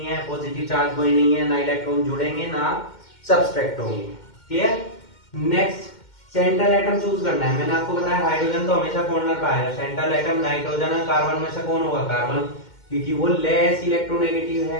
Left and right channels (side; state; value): right; late; 2.1 ms